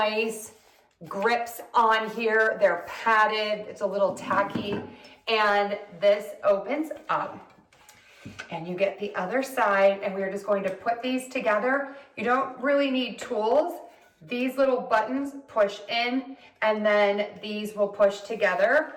grips on here. They're padded. It's a little tacky. And this opens up. And you get the other side, and we're just going to put these together. You don't really need tools. These little buttons push in, and then these will push together.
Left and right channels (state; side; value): identical; both; correlation 1.00